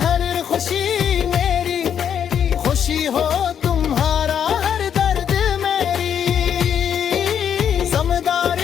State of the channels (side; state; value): right; quieter; 8.5 dB